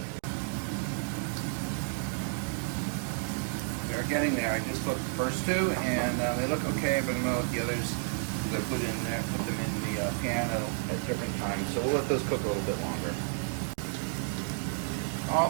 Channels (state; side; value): silent; left; 57 dB below the other